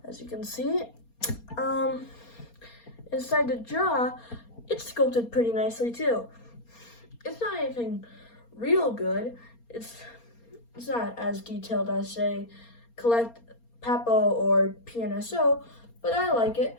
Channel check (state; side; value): late; right; 4.3 ms